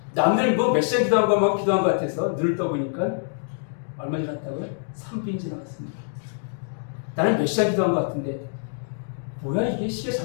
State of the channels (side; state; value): right; silent; digital silence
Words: 남들 몇 시간 기도한 것 같아서 눈을 떠보니까 얼마 지났다고요? 3분 지나갔습니다. 나는 몇 시간 기도한 것 같은데 뭐야, 이게 시계